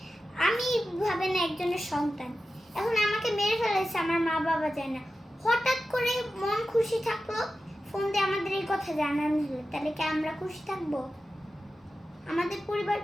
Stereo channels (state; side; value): normal; both; correlation 0.93